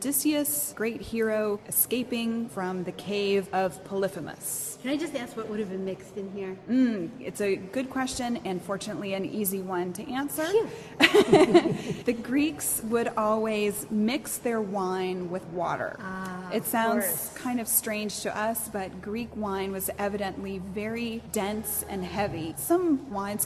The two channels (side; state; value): both; identical; correlation 1.00